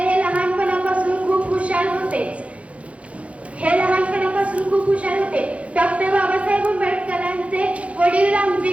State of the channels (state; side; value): late; left; 0.063 ms